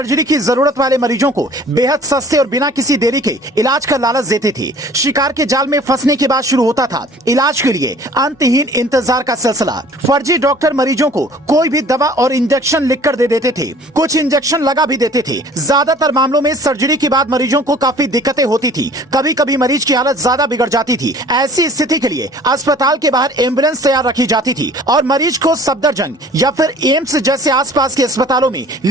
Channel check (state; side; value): normal; both; correlation 0.50